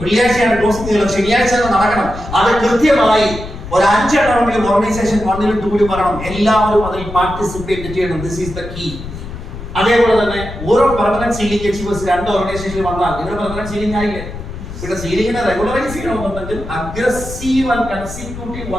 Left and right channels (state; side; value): noise; left; rumble, 10 dB below the sound